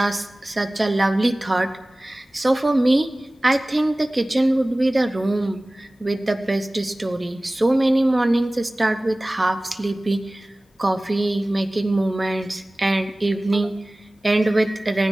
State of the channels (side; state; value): both; normal; correlation 0.98